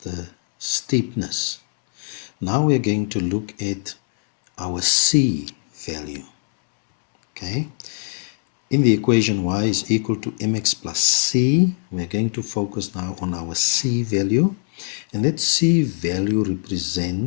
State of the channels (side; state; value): right; silent; 64 dB below the other